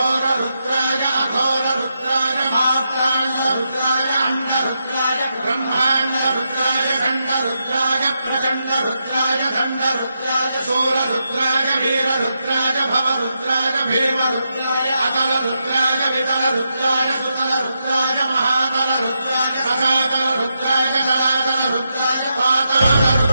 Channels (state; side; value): inverted; both; correlation -0.84